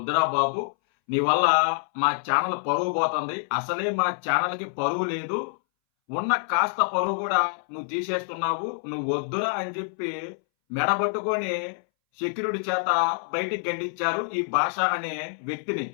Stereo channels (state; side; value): silent; right; 61 dB below the other